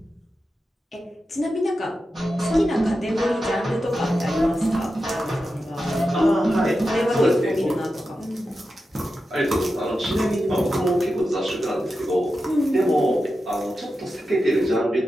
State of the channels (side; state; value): both; normal; correlation 0.91